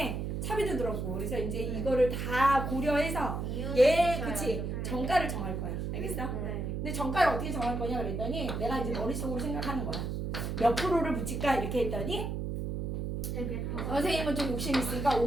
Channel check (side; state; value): right; noise; hum, 3 dB below the sound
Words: 차비도 들었고 그래서 이제 이거를 다 고려해서 그치? 정가를 정할 거야. 알겠어? 근데 정가를 어떻게 정할 거냐 그랬더니 내가 이제 머릿속으로 생각하는 거야. 몇 프로를 붙일까 이렇게 했더니 선생님은 좀 욕심 있으니까